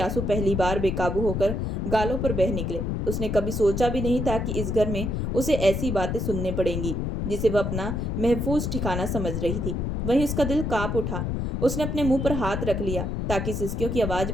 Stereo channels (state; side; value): noise; left; rumble, 1 dB below the sound